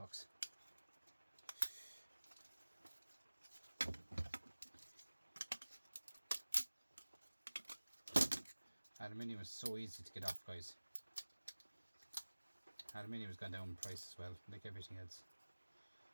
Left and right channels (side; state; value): both; inverted; correlation -1.00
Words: Aluminium is so easy to get off, guys. Aluminium has gone down in price as well, like everything else.